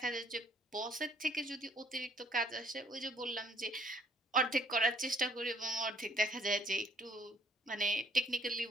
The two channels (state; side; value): normal; both; correlation 0.62